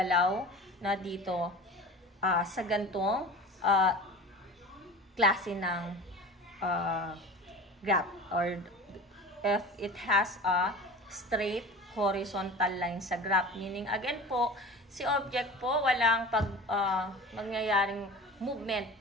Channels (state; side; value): normal; both; correlation 0.36